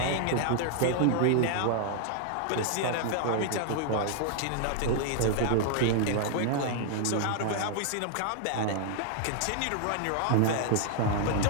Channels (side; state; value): both; different; correlation 0.00